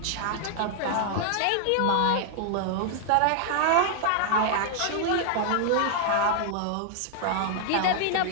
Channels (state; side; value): different; both; correlation 0.00